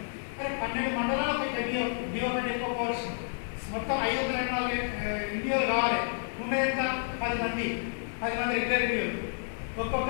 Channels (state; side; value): silent; right; digital silence